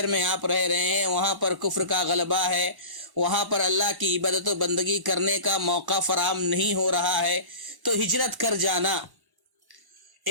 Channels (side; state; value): left; late; 1.1 ms